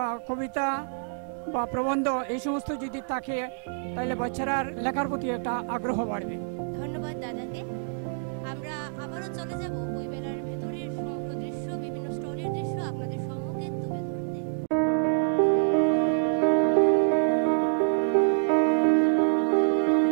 কবিতা বা প্রবন্ধ এই সমস্ত যদি থাকে, তাহলে বাচ্চারার লেখার প্রতি একটা আগ্রহ বাড়বে। ধন্যবাদ দাদাকে। আমরা আবারও চলে যাব বইমেলার ভেতরের সমগ্র দৃশ্য, বিভিন্ন স্টলের দৃশ্য আপনাদের সম্মুখে তুলে ধরতে।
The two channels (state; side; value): silent; left; digital silence